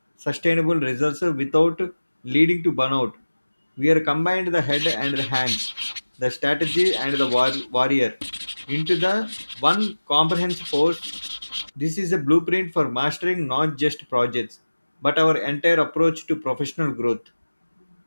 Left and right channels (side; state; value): both; inverted; correlation -1.00